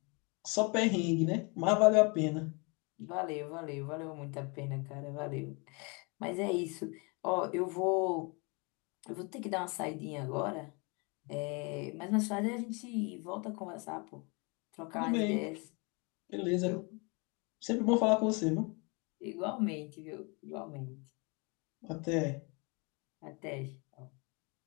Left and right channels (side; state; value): right; quieter; 31.0 dB